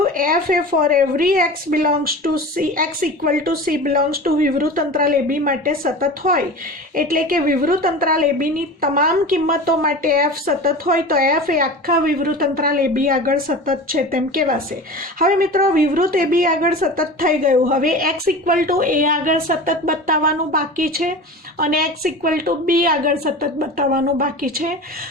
એફ એ for every x belongs to c x equal to c belongs to વિવૃત અંતરાલ એ બી માટે સતત હોય, એટલે કે વિવૃત અંતરાલ એ બીની તમામ કિંમતો માટે એફ સતત હોય તો એફ એ આખા વિવૃત અંતરાલ એ બી આગળ સતત છે તેમ કહેવાશે. હવે મિત્રો વિવૃત એ બી આગળ સતત થઈ ગયું, હવે એક્સ ઇક્વલ ટુ એ આગળ સતત બતાવવાનું બાકી છે અને એક્સ ઇક્વલ ટુ બી આગળ સતત બતાવવાનું બાકી છે.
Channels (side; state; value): both; normal; correlation 0.33